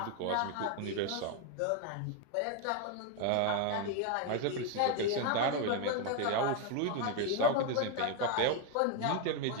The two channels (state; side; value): different; both; correlation 0.01